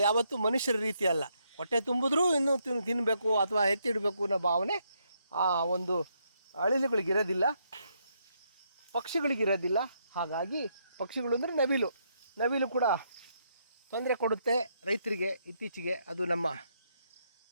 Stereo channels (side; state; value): both; inverted; correlation -0.76